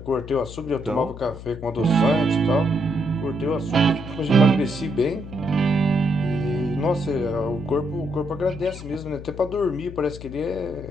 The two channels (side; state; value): left; noise; hum, 12 dB below the sound